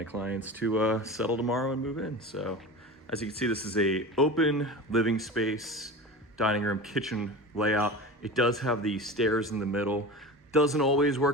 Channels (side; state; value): both; normal; correlation 0.31